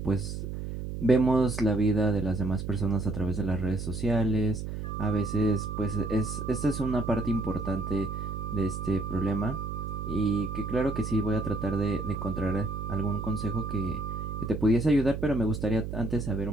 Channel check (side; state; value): right; noise; hum, 5 dB below the sound